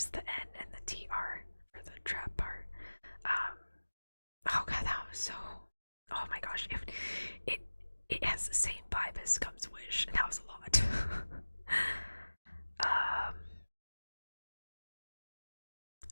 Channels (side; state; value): both; inverted; correlation -1.00